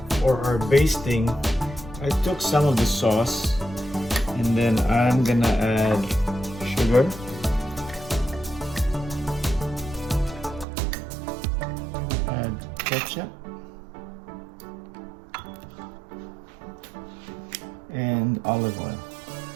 For our basting, I took some of the sauce and then I'm gonna add sugar, ketchup, and olive oil.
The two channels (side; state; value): left; drops out; at 10.7 s